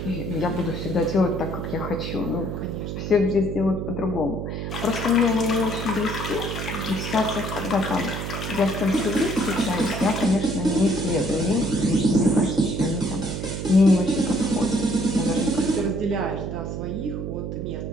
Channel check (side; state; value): right; noise; hum, 5 dB below the sound